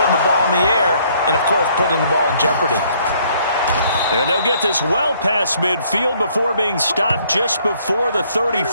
the ball in the air and, of course, putting the ball in jeopardy. And they'll get this well past midfield before being stopped just before the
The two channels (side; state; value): both; inverted; correlation -0.64